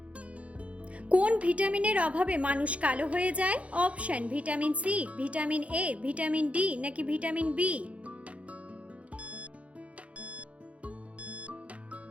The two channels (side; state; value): left; late; 0.064 ms